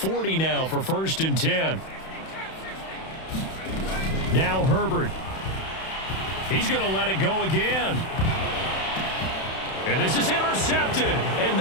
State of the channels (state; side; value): late; right; 31 ms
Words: now for 1st and 10. Now Herbert. He's going to let it go again. And this is intercepted, and